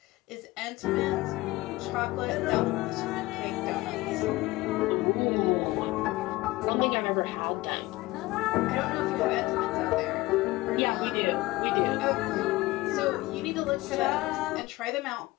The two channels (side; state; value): right; quieter; 19.8 dB